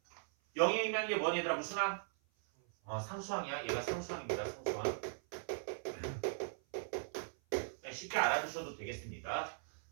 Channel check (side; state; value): left; silent; 52 dB below the other